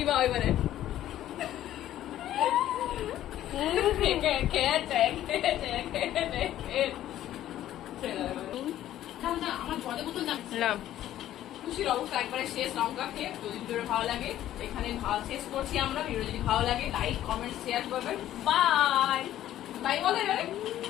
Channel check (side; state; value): right; quieter; 12.7 dB